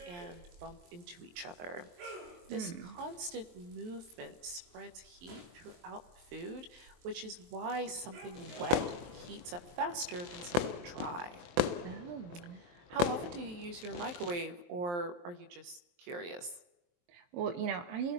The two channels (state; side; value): late; left; 23 ms